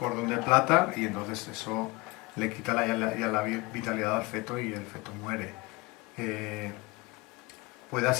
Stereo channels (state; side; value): quieter; right; 24.0 dB